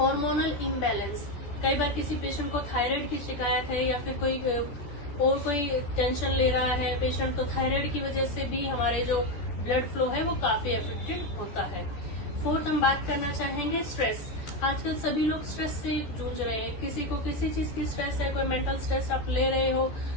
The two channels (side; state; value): right; late; 14 ms